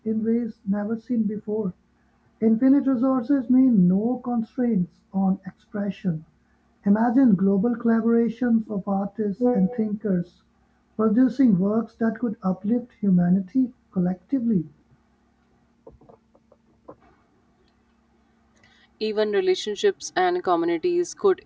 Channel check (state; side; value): identical; both; correlation 1.00